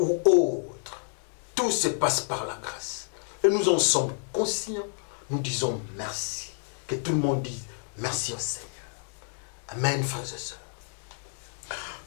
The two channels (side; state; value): right; silent; digital silence